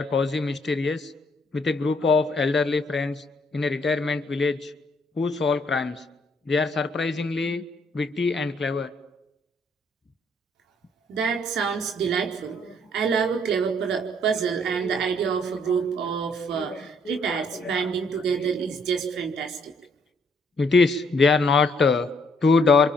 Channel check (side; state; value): both; normal; correlation 0.68